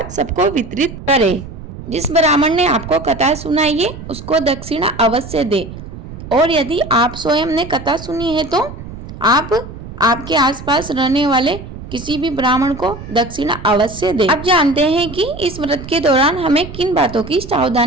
सबको वितरित करें। जिस ब्राह्मण ने आपको कथा सुनाई है उसको दक्षिणा अवश्य दे। और यदि आप स्वयं ने कथा सुनी है तो आप आपके आसपास रहने वाले किसी भी ब्राह्मण को दक्षिणा अवश्य दे। अब जानते हैं कि इस व्रत के दौरान हमें किन बातों की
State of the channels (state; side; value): noise; right; rumble, 13 dB below the sound